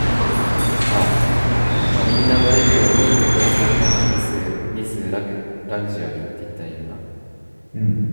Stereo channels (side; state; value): both; inverted; correlation -1.00